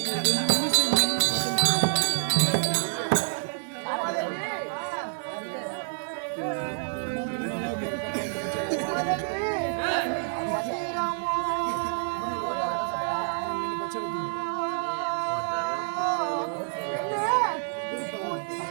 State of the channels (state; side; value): silent; left; digital silence